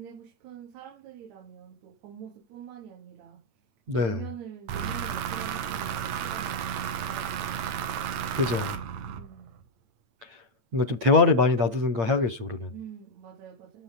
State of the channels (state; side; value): late; left; 8.8 ms